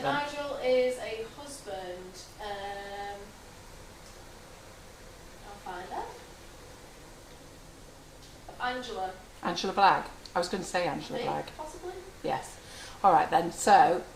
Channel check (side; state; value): both; identical; correlation 1.00